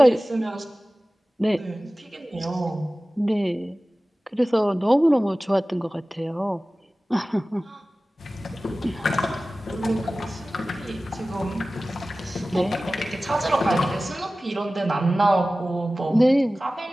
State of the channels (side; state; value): both; normal; correlation 0.97